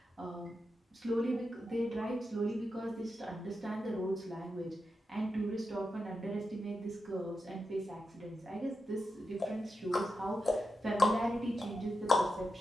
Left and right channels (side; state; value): both; normal; correlation 0.88